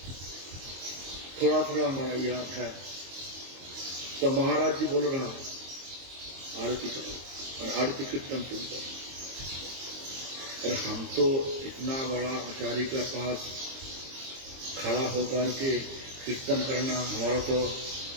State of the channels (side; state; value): left; late; 22 ms